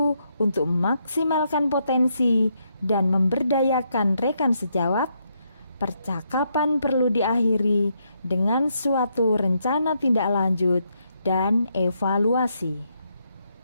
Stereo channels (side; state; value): both; inverted; correlation -0.78